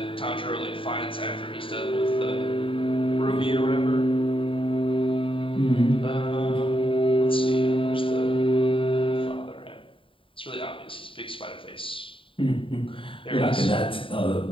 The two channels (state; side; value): late; right; 0.25 ms